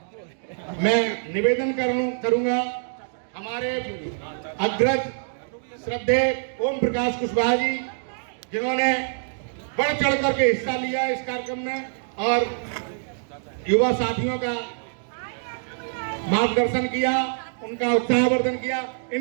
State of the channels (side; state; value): left; silent; digital silence